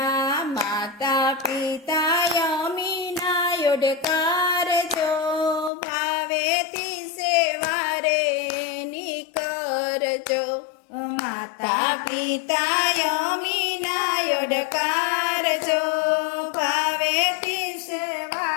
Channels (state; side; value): drops out; right; at 5.7 s